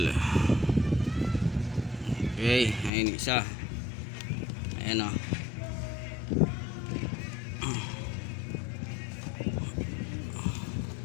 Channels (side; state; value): right; drops out; at 2.9 s